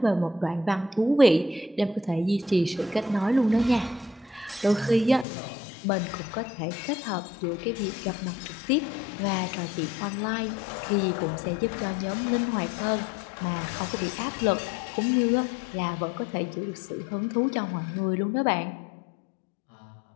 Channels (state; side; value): drops out; right; at 5.2 s